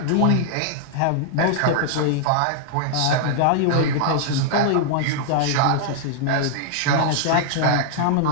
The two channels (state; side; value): different; both; correlation -0.01